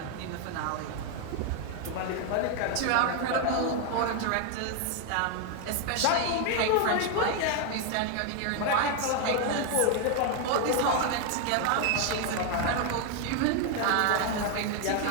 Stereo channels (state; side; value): different; both; correlation 0.01